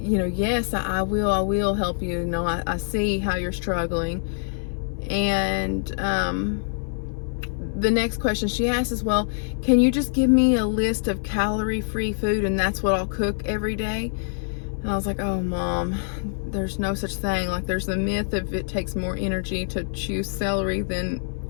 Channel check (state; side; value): silent; right; 59 dB below the other